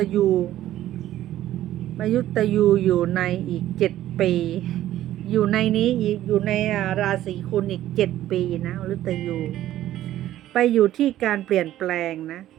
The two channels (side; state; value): left; quieter; 13.3 dB